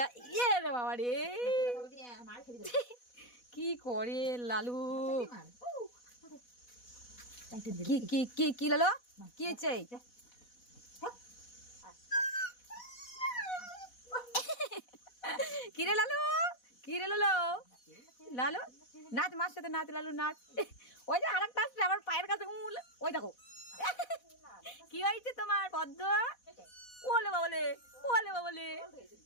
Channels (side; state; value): right; late; 4.1 ms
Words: কি রে বাবা রে কি করে লালু কি কি কি কি লালু কি হয়েছে কি রে লালু কি রে লালু লালু নাচ মার সাথে নাচ লালু নাচ ওই যে আরেকটা আসছে আমার পায়ের কাছে ওই দেখো কি হয়েছে তোমার পদ্ম ওলে বাবলে ওলে বাবলে